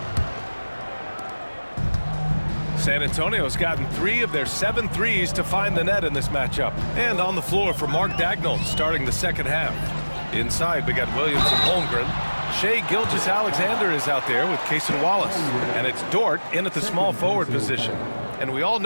San Antonio's gotten 3 of their 7 threes to find the net in this matchup. And on the floor for Mark Daigneault starting the second half. Inside, we got Williams and Holmgren. Shai Gilgeous-Alexander is out there with Cason Wallace. And it's Dort in at the small forward position. And we all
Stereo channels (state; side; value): inverted; both; correlation -1.00